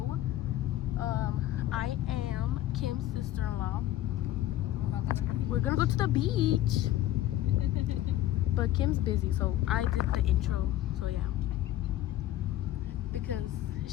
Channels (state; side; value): quieter; right; 14.0 dB